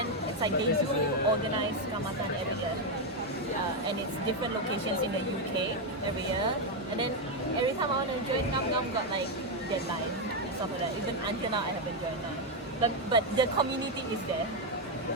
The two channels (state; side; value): normal; both; correlation 0.04